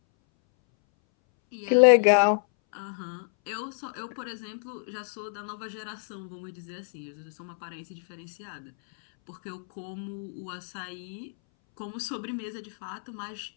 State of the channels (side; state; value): right; silent; 59 dB below the other